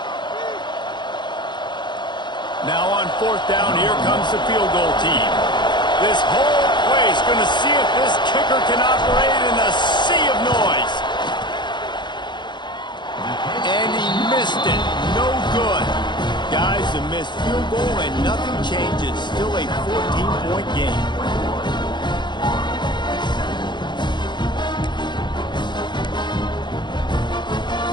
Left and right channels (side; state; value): right; late; 0.22 ms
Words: Now on fourth down, here comes the field goal team. This whole place going to see if this kicker can operate in a sea of noise. And he missed it. No good. Guys, a missed field goal and nothing changes. Still a 14-point game.